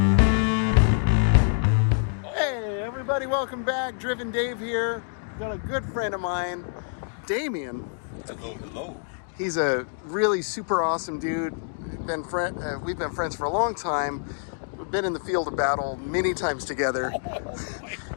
Hey, everybody, welcome back. Driven Dave here. Got a good friend of mine, Damion. Hello, hello. He's a really super awesome dude. We've been friends for a long time. We've been in the field of battle many times together.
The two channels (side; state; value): right; silent; digital silence